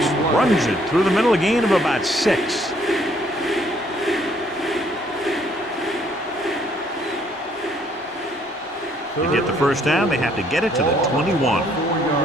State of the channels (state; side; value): normal; both; correlation 0.65